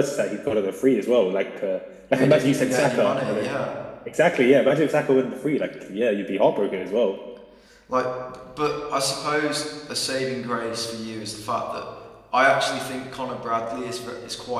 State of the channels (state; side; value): identical; both; correlation 1.00